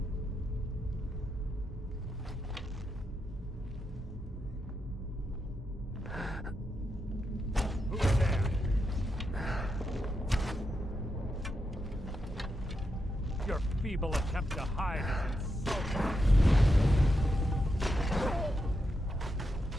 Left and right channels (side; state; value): both; normal; correlation 0.85